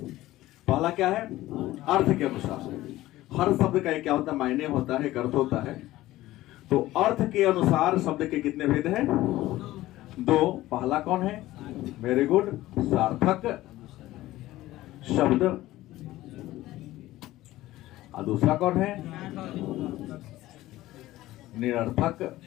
पहला क्या है? अर्थ के अनुसार। हर शब्द का एक क्या होता है? मायने होता है, एक अर्थ होता है। तो अर्थ के अनुसार शब्द के कितने भेद हैं? दो। पहला कौन है? वेरी गुड, सार्थक शब्द। और दूसरा कौन है? निरर्थक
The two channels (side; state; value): right; quieter; 16.3 dB